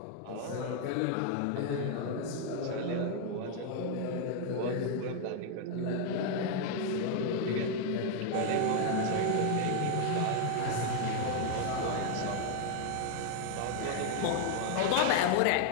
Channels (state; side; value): different; both; correlation 0.00